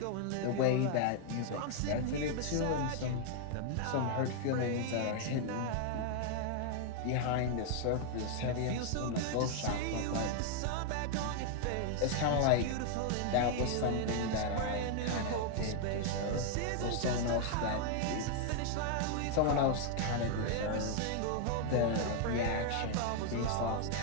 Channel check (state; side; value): different; both; correlation 0.00